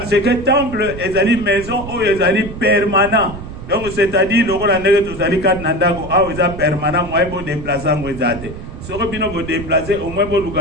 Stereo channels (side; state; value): right; noise; rumble, 11 dB below the sound